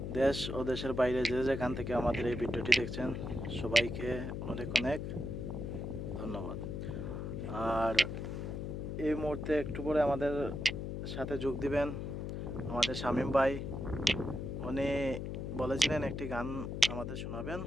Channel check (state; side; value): noise; left; hum, 4 dB below the sound